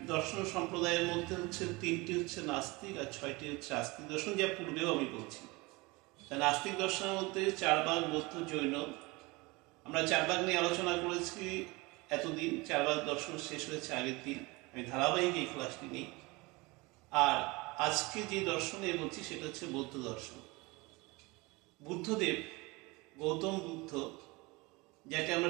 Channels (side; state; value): left; quieter; 24.2 dB